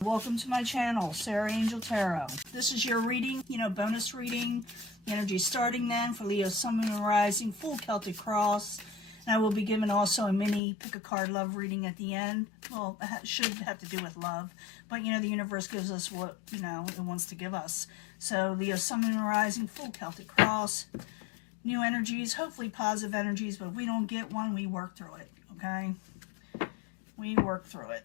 Welcome to my channel, Sarah Angel Tarot. This is your reading, bonus reading. The energy starting then for Leo, Sun, Moon, and Rising, full Celtic cross. And I will be giving also a mini pick a card love reading at the end. Well, it should have to do with love. But, the universe gives us what, it wants to give us. So, Leo, Sun, Moon, and Rising, full Celtic cross. New energies, hopefully positive energies. But if we don't get one, we work through it, okay? We work through it.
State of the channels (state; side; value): drops out; right; at 10.6 s